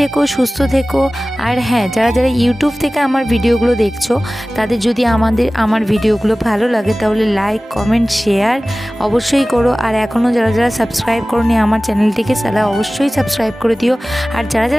সুস্থ থেকো। আর হ্যাঁ, যারা যারা ইউটিউব থেকে আমার ভিডিওগুলো দেখছো, তাদের যদি আমার ভিডিওগুলো ভালো লাগে তাহলে লাইক, কমেন্ট, শেয়ার অবশ্যই করো। আর এখনও যারা যারা সাবস্ক্রাইব করোনি আমার চ্যানেলটিকে, তারা অবশ্যই সাবস্ক্রাইব করে দিও। আর যারা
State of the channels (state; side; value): normal; both; correlation 0.97